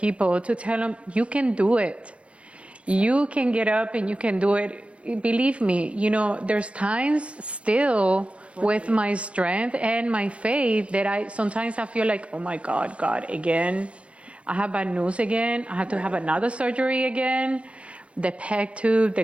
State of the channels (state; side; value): late; left; 0.061 ms